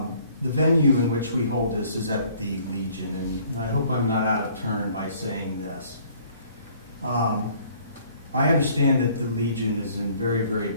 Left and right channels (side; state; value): both; inverted; correlation -0.58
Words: the venue in which we hold this is at the Legion, and I hope I'm not out of turn by saying this. I understand that the Legion is in very, very